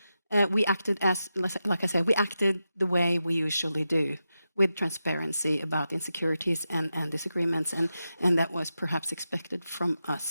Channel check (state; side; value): inverted; both; correlation -0.90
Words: we acted like I said, we acted the way we usually do. with transparency about insecurities and disagreements, and that was perhaps expected from